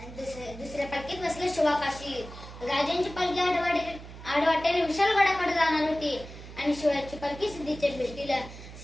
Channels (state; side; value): noise; right; hum, 14 dB below the sound